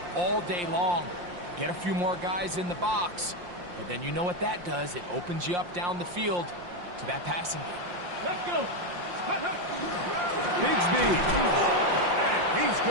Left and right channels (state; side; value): late; left; 5.7 ms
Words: all day long. Get a few more guys in the box, and then you know what that does. It opens you up down the field to that passing game. Let's go. Bigsby. And he's